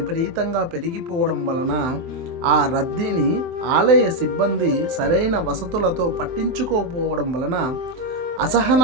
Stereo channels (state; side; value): late; left; 24 ms